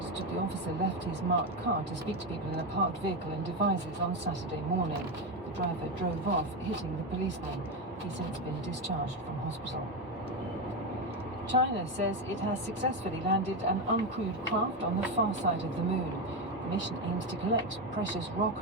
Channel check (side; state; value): both; normal; correlation 0.12